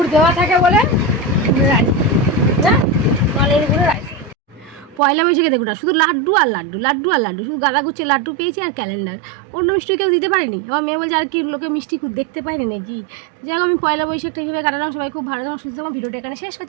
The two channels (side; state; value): left; drops out; at 5.0 s